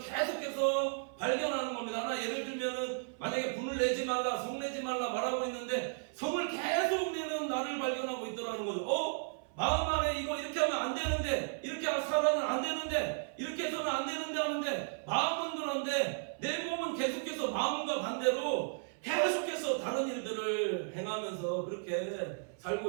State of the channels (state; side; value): silent; left; 55 dB below the other